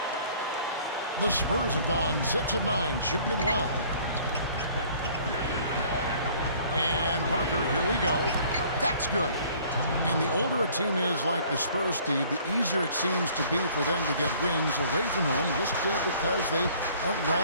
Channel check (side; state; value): both; inverted; correlation -0.55